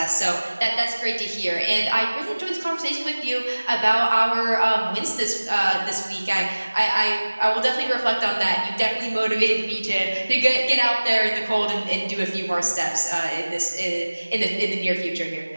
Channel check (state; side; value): inverted; both; correlation -1.00